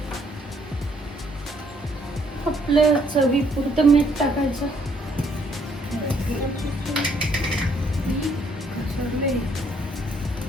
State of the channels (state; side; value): normal; both; correlation 0.67